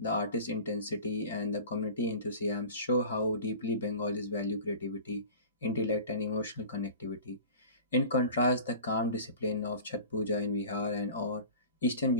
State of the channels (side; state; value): both; inverted; correlation -0.38